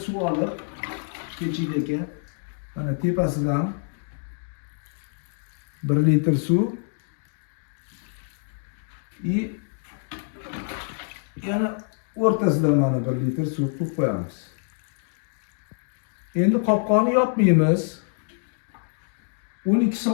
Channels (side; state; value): right; silent; 61 dB below the other